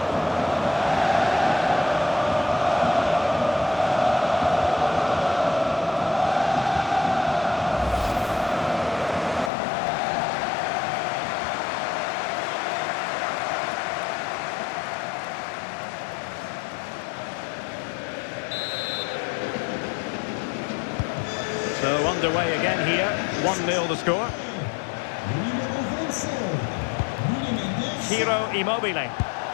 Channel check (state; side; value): drops out; right; at 9.5 s